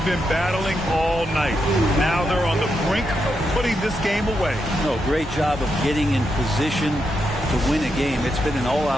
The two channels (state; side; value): normal; both; correlation 0.83